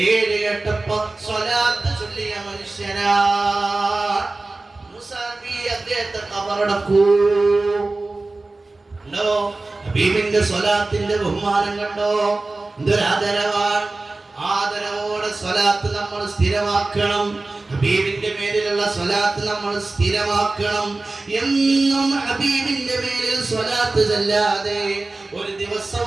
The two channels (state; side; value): quieter; left; 3.2 dB